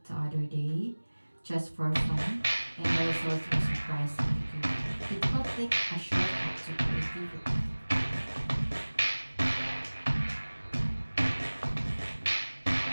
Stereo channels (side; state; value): both; inverted; correlation -1.00